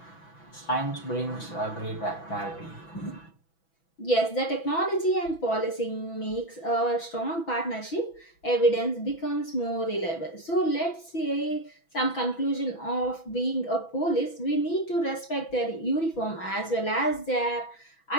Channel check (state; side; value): late; right; 6.0 ms